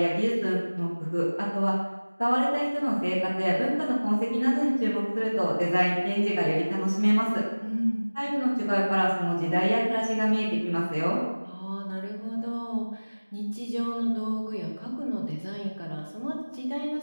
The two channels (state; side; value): inverted; both; correlation -1.00